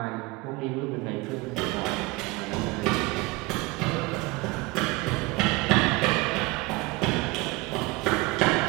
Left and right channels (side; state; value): left; quieter; 23.3 dB